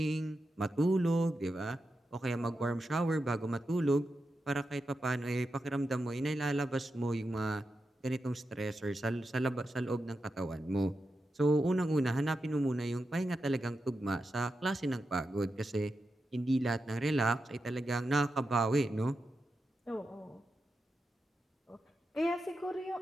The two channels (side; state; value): both; normal; correlation 0.89